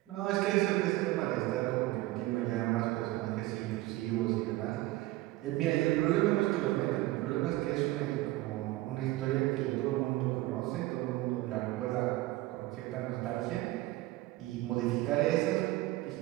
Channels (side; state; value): left; quieter; 18.0 dB